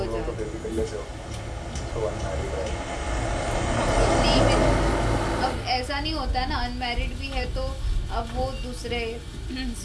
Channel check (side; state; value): both; identical; correlation 1.00